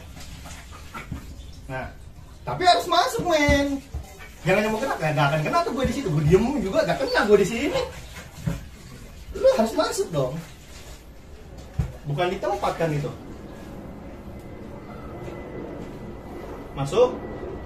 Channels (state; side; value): identical; both; correlation 1.00